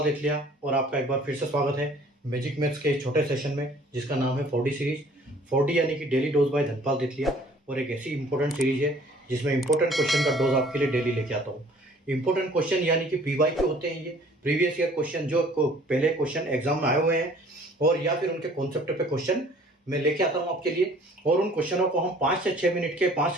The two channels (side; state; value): both; normal; correlation 0.54